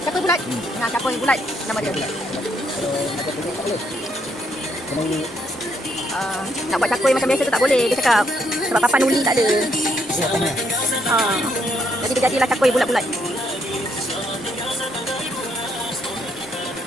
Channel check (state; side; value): normal; both; correlation 0.73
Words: Cakui bulat. Nah, cakui bulat nama dia. Nak buat cakui macam biasa tu tak boleh, dia cakap. Sebab papan uli tak ada. Jadi dia jadilah cakui bulat-bulat.